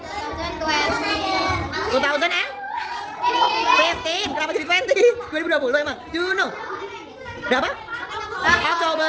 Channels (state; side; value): identical; both; correlation 1.00